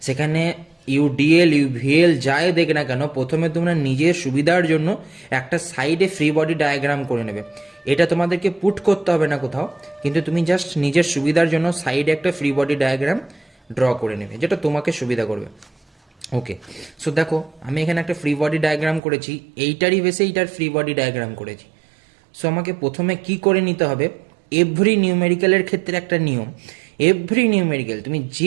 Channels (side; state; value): left; drops out; at 19.0 s